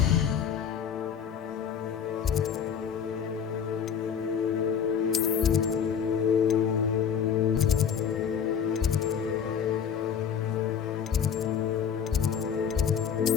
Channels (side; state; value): right; quieter; 7.7 dB